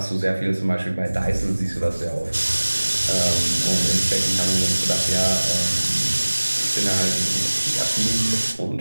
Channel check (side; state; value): both; inverted; correlation -1.00